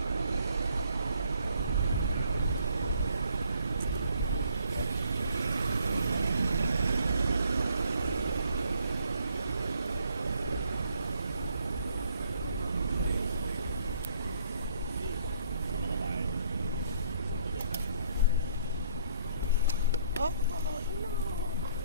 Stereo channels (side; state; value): both; inverted; correlation -0.64